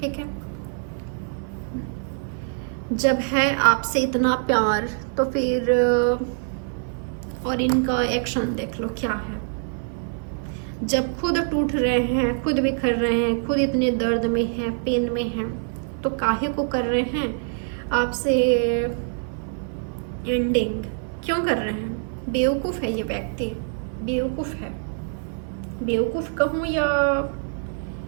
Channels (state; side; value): silent; left; 57 dB below the other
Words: ठीक है, जब है आपसे इतना प्यार तो फिर और इनका एक्शन देख लो क्या है। जब खुद टूट रहे हैं, खुद बिखर रहे हैं, खुद इतने दर्द में हैं, पेन में हैं, तो काहे को कर रहे हैं आपसे एंडिंग? क्यों कर रहे हैं? बेवकूफ़ है ये व्यक्ति, बेवकूफ़ है। बेवकूफ़ कहूँ या